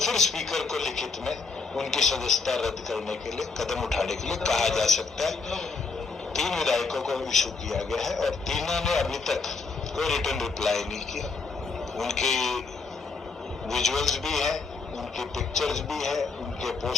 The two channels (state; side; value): quieter; right; 4.4 dB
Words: स्पीकर को लिखित में उनकी सदस्यता रद्द करने के लिए कदम उठाने के लिए कहा जा सकता है। 3 विधायकों को इशू किया गया है और तीनों ने अभी तक कोई रिटर्न रिप्लाई नहीं किया। उनकी विजुअल्स भी है, उनकी पिक्चर्स भी है, उनके